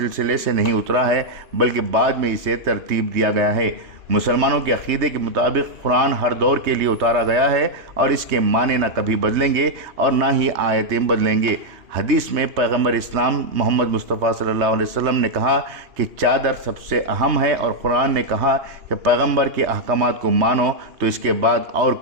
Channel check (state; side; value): late; left; 3.2 ms